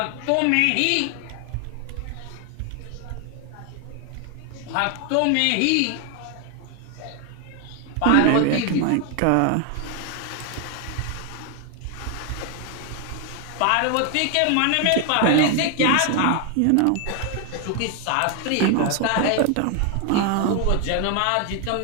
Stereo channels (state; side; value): different; both; correlation 0.00